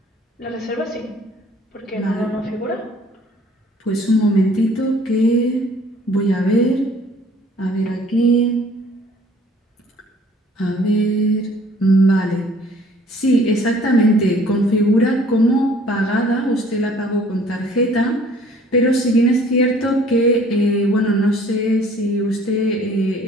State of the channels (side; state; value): both; normal; correlation 0.55